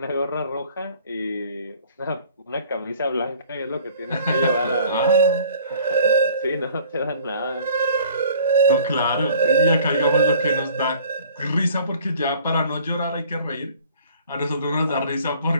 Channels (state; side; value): inverted; both; correlation -0.52